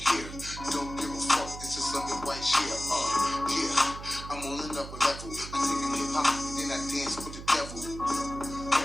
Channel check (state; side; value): noise; right; hum, 11 dB below the sound